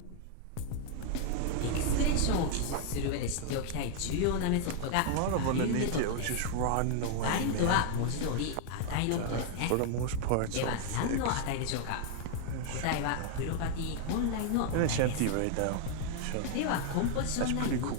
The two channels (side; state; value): both; different; correlation 0.00